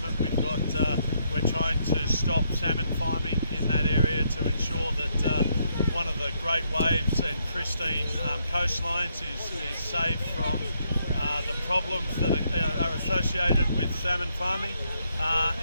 we're trying to stop salmon farming in that area to ensure that one of the great waves and pristine coastlines is saved from the problems that are associated with salmon farming.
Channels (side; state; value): both; inverted; correlation -0.75